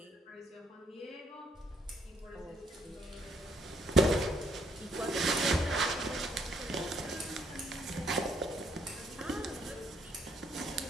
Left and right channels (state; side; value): normal; both; correlation 0.69